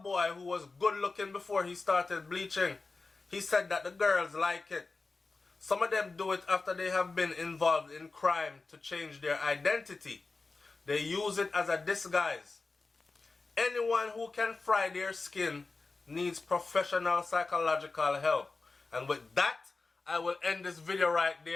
boy who was good looking before he started bleaching. He said that the girls like it. Some of them do it after they have been involved in crime to change their identity. They use it as a disguise. Anyone who can fry their skin needs professional psychological help. And with that, I will end this video right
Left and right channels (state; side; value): quieter; right; 3.8 dB